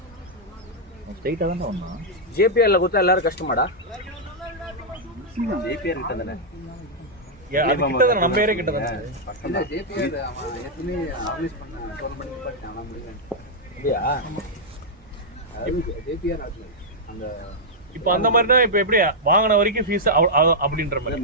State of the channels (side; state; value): both; normal; correlation -0.06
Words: ஸ்ட்ரைட்டா தான் வந்தான். ஜேபிஆர்ல கொடுத்தா எல்லாரும் கஷ்டமாடா. ஜேபிஆர் கிட்ட தானே நம்ம ஏரியா கிட்ட தானே. இல்ல ஜேபிஆர் அவன் ஏற்கனவே ஆர்கனைஸ் பண்ண டோர்னமெண்ட் பார்த்தானா முடியல. அப்படியா? ஜேபிஆர் அந்த இப்போ அந்த மாதிரினா இப்போ எப்படி வாங்கின வரைக்கும் ஃபீஸ் அப்படின்ற மாதிரி